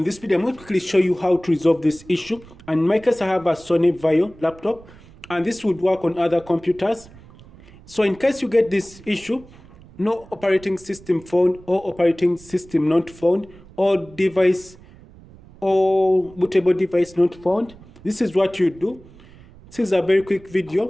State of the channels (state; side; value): noise; right; rumble, 22 dB below the sound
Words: This video I'm going to quickly show you how to resolve this issue. And in my case I have a Sony Vaio laptop and this would work on other computers. So in case you get this issue, no operating system found or operating system not found or device or bootable device not found, this is what you do. This is a very quick